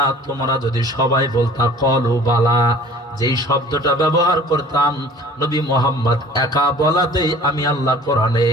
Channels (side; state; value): both; normal; correlation 0.47